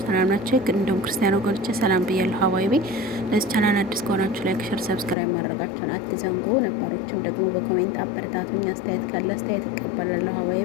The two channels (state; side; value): drops out; right; at 5.2 s